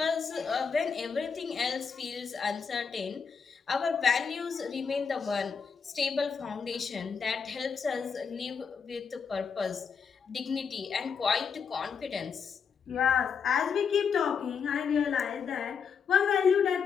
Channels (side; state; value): right; quieter; 6.2 dB